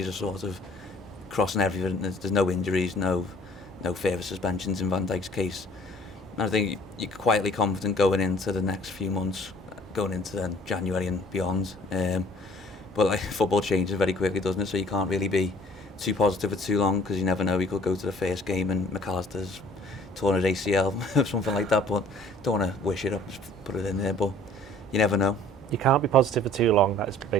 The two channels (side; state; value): both; normal; correlation 0.53